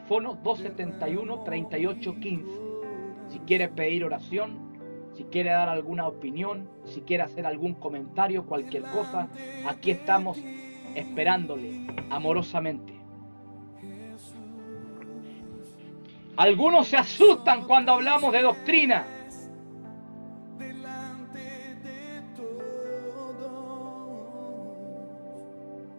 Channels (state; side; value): inverted; both; correlation -1.00